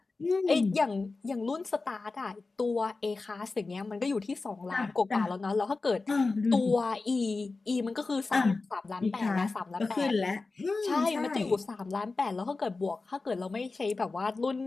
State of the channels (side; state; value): right; quieter; 3.8 dB